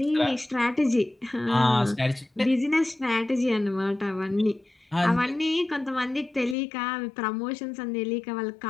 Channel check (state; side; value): drops out; right; at 6.6 s